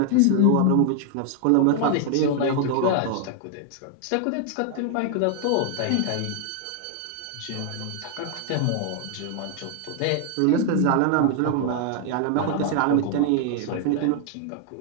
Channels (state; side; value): different; both; correlation 0.00